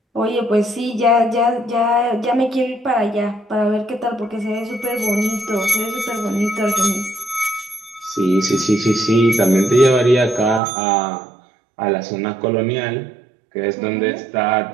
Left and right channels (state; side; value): drops out; left; at 10.6 s